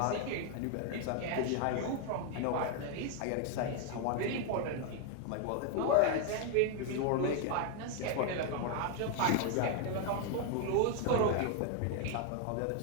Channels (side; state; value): both; different; correlation 0.00